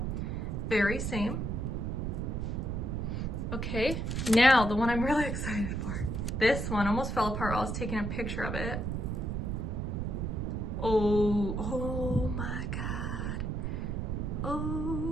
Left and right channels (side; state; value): right; noise; rumble, 1 dB below the sound